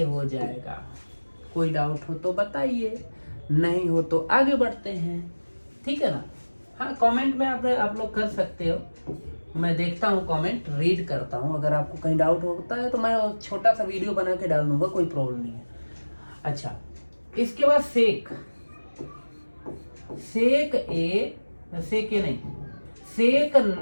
हो जाएगा। कोई डाउट हो तो बताइए, नहीं हो तो आगे बढ़ते हैं। ठीक है ना? हाँ, कमेंट में आप लोग कर सकते हो। मैं देखता हूँ कमेंट, रीड करता हूँ। अगर आपको कहीं डाउट होता है तो मैं छोटा सा वीडियो बना के डाल दूंगा, कोई प्रॉब्लम नहीं है। अच्छा, इसके बाद सेक ए नहीं, सेक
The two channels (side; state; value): both; inverted; correlation -1.00